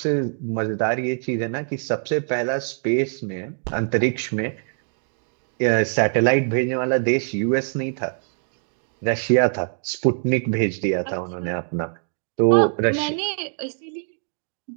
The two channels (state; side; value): silent; left; 63 dB below the other